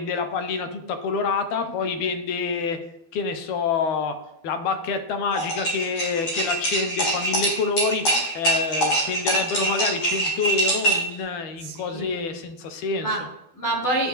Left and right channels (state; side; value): late; right; 12 ms